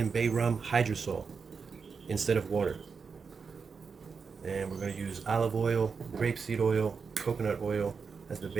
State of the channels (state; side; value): quieter; left; 5.4 dB